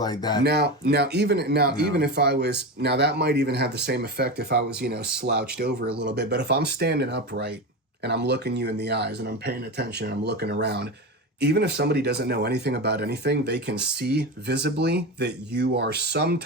like that. Even if I was that might even have the same effect if I was, you know, slouched over a little bit. But if I'm standing upright and I'm looking you in the eyes and I'm paying attention and I'm looking around, even if somebody doesn't know anything about anything, they can see visibly that you are some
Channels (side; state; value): both; normal; correlation 0.22